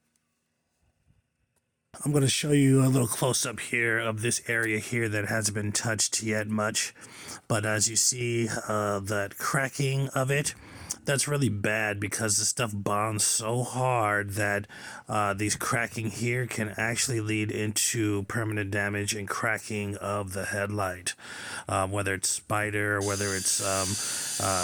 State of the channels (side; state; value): both; identical; correlation 1.00